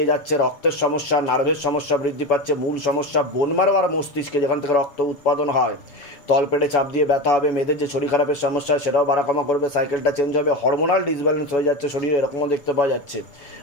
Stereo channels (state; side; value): late; right; 7.1 ms